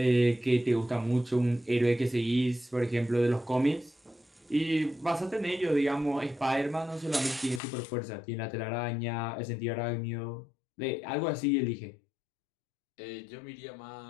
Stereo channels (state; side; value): drops out; right; at 7.6 s